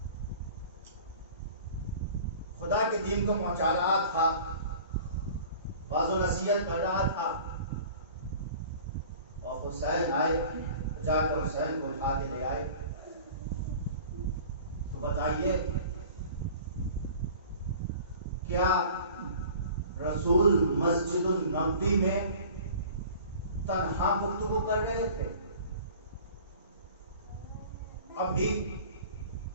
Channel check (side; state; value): both; inverted; correlation -0.44